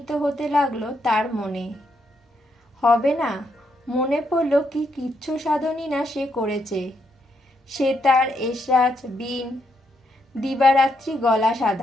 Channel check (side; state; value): both; normal; correlation 0.78